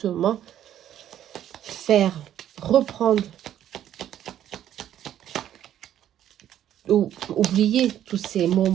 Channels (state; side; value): quieter; left; 11.2 dB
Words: faire reprendre ou oublier tous ces